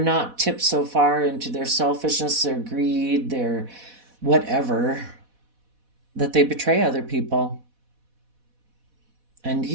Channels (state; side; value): late; left; 4.1 ms